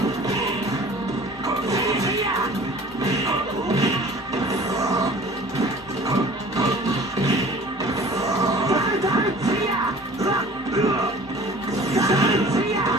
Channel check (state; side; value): normal; both; correlation 0.46